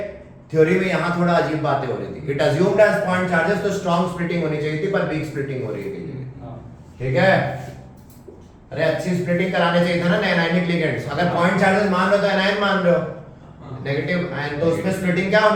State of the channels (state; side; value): identical; both; correlation 1.00